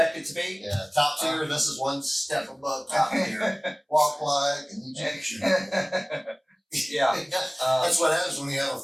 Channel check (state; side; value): identical; both; correlation 1.00